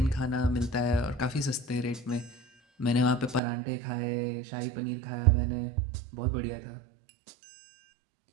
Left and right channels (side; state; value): left; drops out; at 3.4 s